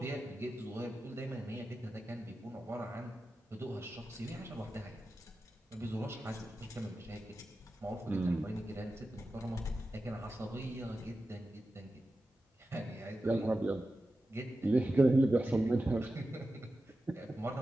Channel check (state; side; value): normal; both; correlation 0.92